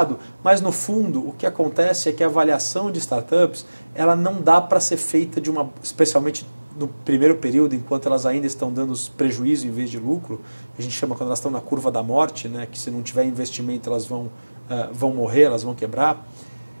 mas no fundo o que acontece é que a avaliação de startups, ela não dá para ser feita especialmente no primeiro período, enquanto elas ainda estão dando prejuízo em vez de lucro, a gente chama quando elas estão na curva da morte, né, que se não tiver investimento elas vão morrer, elas vão quebrar.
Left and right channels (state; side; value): inverted; both; correlation -1.00